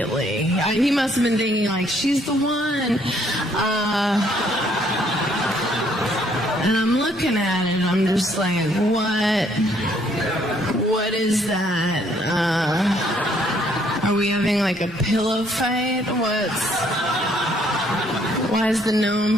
He must have been thinking like, she's the one. And I'm looking at it, I'm just like, what is that? Are we having like a pillow fight? Why is the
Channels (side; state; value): both; normal; correlation 0.66